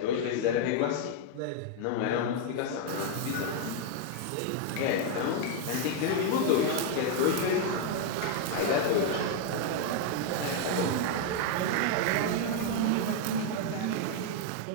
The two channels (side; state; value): both; different; correlation 0.00